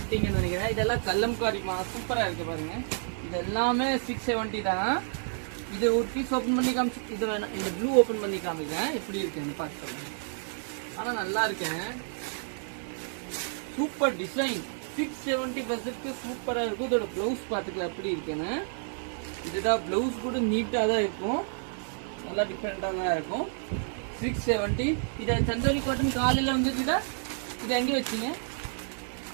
நினைக்கிறேன். இதெல்லாம் கல்லம்காரிமா சூப்பரா இருக்கு பாருங்க. இது எல்லாமே 670 தான். இது ஒரு பீஸ் ஓபன் பண்ணி காமிச்சு இது வேணாம். இந்த ப்ளூ ஓபன் பண்ணி காமிக்கிறேன் எப்படி இருக்குன்னு பார்த்து. ஆனா நல்லா இருக்கேன். சூப்பர் டிசைன் 670 சூப்பரா இருக்கும். இதோட பிளவுஸ் பாத்துக்கலாம் எப்படி இருக்குன்னு. இதுதான் பிளவுஸ் கூட நீட்டா தான் இருக்கும். நல்லா டிஃப்ரெண்டா தான் இருக்கும். 670. இதை சந்தோரி காட்டன் காலையில வந்துச்சுதா. இது எங்க வச்சீங்க?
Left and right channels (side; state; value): left; silent; 58 dB below the other